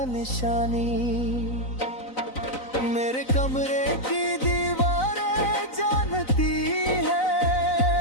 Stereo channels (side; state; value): right; late; 4.0 ms